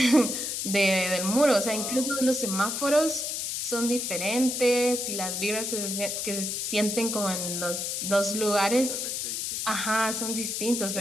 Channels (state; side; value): noise; left; hiss, 2 dB below the sound